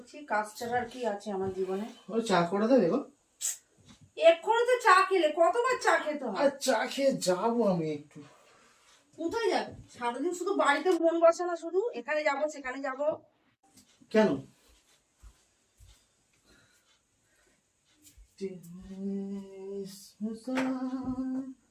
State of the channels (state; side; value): identical; both; correlation 1.00